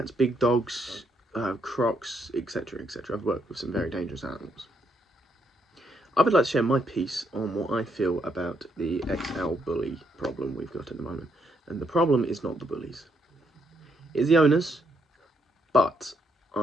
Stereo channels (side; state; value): both; normal; correlation 0.75